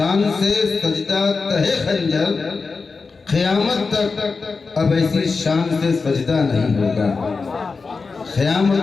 سے سجدہ تہے خنجر، قیامت تک اب ایسی شان سے سجدہ نہیں ہوگا۔ قیامت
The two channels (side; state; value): right; quieter; 4.5 dB